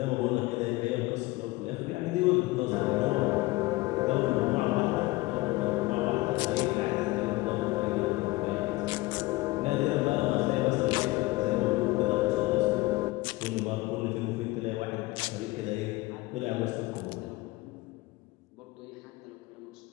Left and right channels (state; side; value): quieter; right; 20.5 dB